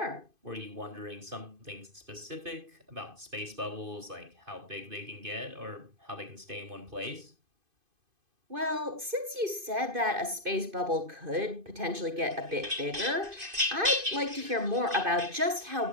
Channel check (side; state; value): left; late; 2.5 ms